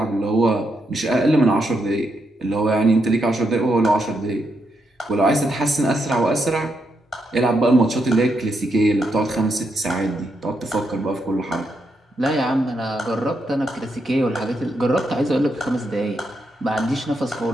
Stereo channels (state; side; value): normal; both; correlation 0.81